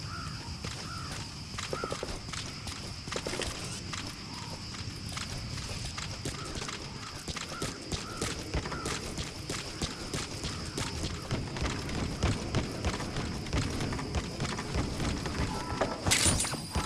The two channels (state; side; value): identical; both; correlation 1.00